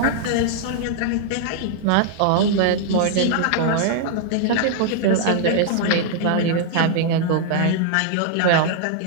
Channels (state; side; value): different; both; correlation -0.01